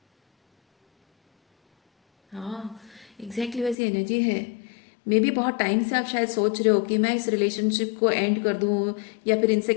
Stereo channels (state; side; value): drops out; right; at 3.8 s